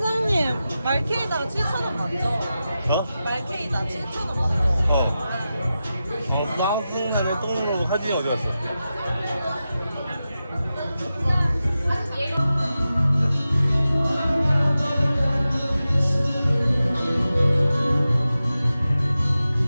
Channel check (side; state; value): both; inverted; correlation -0.92